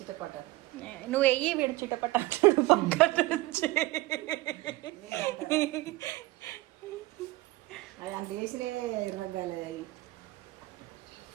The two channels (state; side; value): quieter; left; 19.4 dB